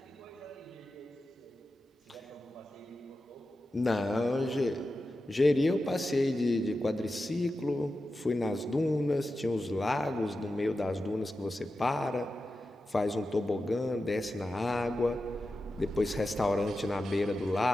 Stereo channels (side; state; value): both; normal; correlation 0.92